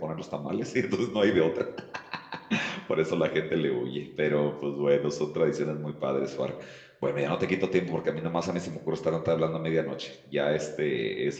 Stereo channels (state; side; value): identical; both; correlation 1.00